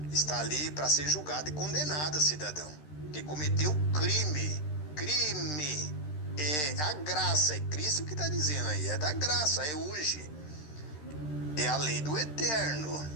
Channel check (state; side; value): late; right; 13 ms